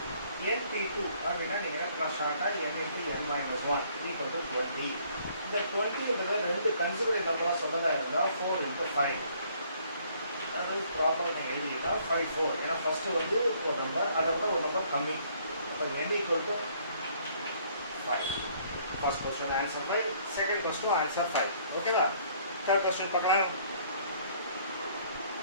NP2 அப்படின்னா நீங்கள் ஷார்ட்டாக n into n minus 1 equal to 20. இந்த 20 ரெண்டு கன்சிடரேட் நம்பராக சொன்னதாக இருந்தால் 4 into 5. அதாவது ப்ராப்பராக நீங்கள் எழுதினா 5 4. ஏன்னா ஃபஸ்ட்டு வந்து ஒரு நம்பர் அதை விட ஒரு நம்பர் கம்மி. அப்போ n equal to 5. First question answer 5. Second question answer 5. ஓகேவா? Third question பார்க்கலாம்.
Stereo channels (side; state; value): both; inverted; correlation -0.62